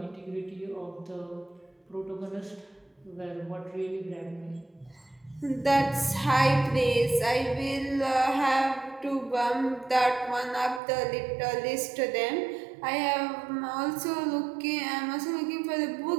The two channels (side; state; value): left; drops out; at 10.8 s